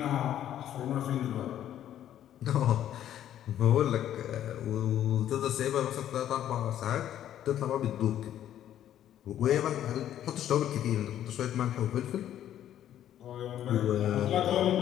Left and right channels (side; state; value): right; quieter; 11.3 dB